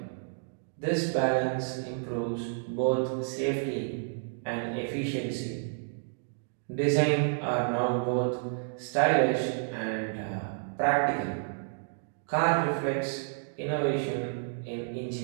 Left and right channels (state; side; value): silent; left; digital silence